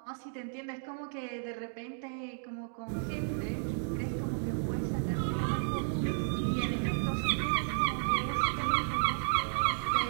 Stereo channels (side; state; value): left; silent; digital silence